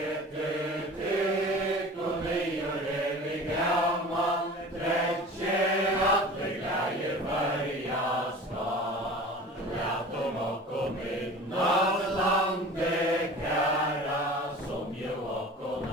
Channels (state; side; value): normal; both; correlation 0.39